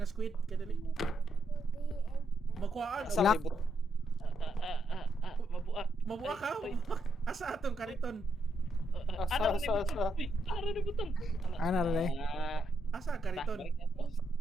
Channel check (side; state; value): both; normal; correlation 0.78